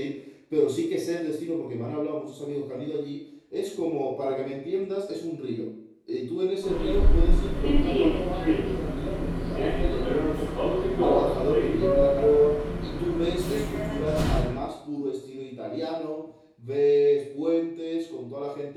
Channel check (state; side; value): identical; both; correlation 1.00